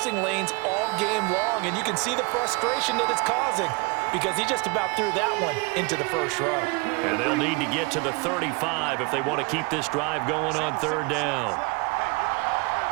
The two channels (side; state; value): left; quieter; 27.8 dB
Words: lanes all game long, and you can see the frustration that it's causing because he just about threw that one into the first row. And they'll need to get to the 35 if they want to keep this drive going on third down.